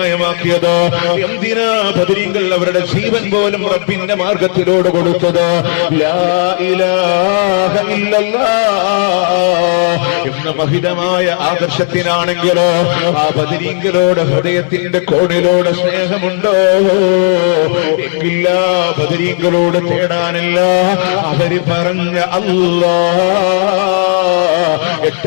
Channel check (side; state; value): right; silent; digital silence